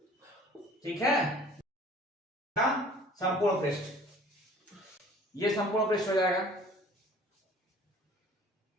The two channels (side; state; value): both; normal; correlation 0.50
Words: ठीक है, संपूर्ण पृष्ठ, ये संपूर्ण पृष्ठ हो जाएगा।